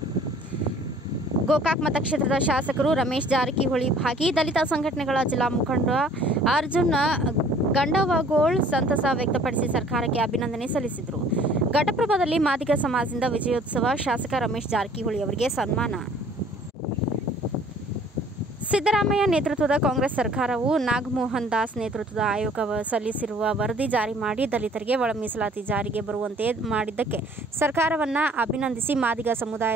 ಗೋಕಾಕ್ ಮತಕ್ಷೇತ್ರದ ಶಾಸಕರು ರಮೇಶ್ ಜಾರಕಿಹೊಳಿ ಭಾಗಿ. ದಲಿತ ಸಂಘಟನೆಗಳ ಜಿಲ್ಲಾ ಮುಖಂಡ ಅರ್ಜುನ್ ಗಂಡವಗೋಳ್ ಸಂತಸ ವ್ಯಕ್ತಪಡಿಸಿ ಸರ್ಕಾರಕ್ಕೆ ಅಭಿನಂದನೆ ಸಲ್ಲಿಸಿದರು. ಘಟಪ್ರಭಾದಲ್ಲಿ ಮಾದಿಗ ಸಮಾಜದಿಂದ ವಿಜಯೋತ್ಸವ, ಶಾಸಕ ರಮೇಶ್ ಜಾರಕಿಹೊಳಿ ಅವರಿಗೆ ಸನ್ಮಾನ. ಸಿದ್ದರಾಮಯ್ಯ ನೇತೃತ್ವದ ಕಾಂಗ್ರೆಸ್ ಸರ್ಕಾರವು ನಾಗಮೋಹನ್ ದಾಸ್ ನೇತೃತ್ವದ ಆಯೋಗ ಸಲ್ಲಿಸಿರುವ ವರದಿ ಜಾರಿ ಮಾಡಿ ದಲಿತರಿಗೆ ಒಳ ಮೀಸಲಾತಿ ಜಾರಿಗೆ ಬರುವಂತೆ ಮಾಡಿದ್ದಕ್ಕೆ ಸರ್ಕಾರವನ್ನು ಅಭಿನಂದಿಸಿ ಮಾದಿಗ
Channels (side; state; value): both; normal; correlation 0.55